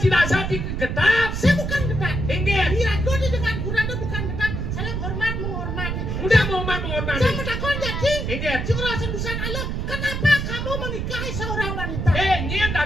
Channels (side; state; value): right; noise; rumble, 3 dB below the sound